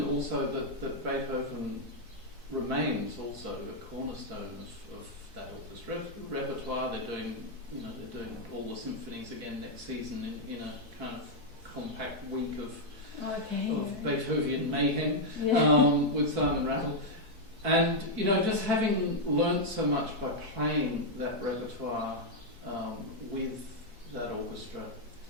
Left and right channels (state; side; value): late; left; 4.6 ms